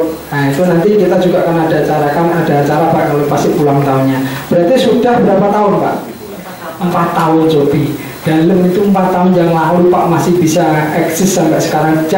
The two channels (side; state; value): both; identical; correlation 1.00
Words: Nah itu nanti kita juga akan ada acara Pak kalau pasti ulang tahunnya. Berarti sudah berapa tahun Pak? 4 tahun Jopi. Dalam itu 4 tahun yang lalu Pak masih bisa eksis sampai sekarang.